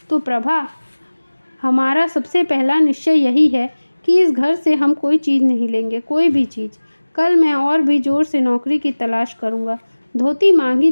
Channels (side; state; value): both; inverted; correlation -1.00